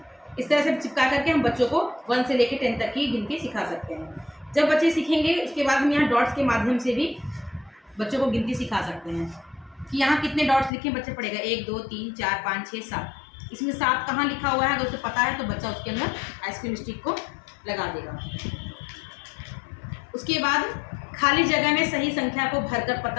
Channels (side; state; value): right; drops out; at 10.7 s